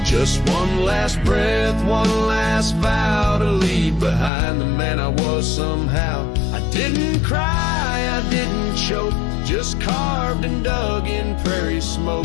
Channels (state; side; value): drops out; right; at 4.3 s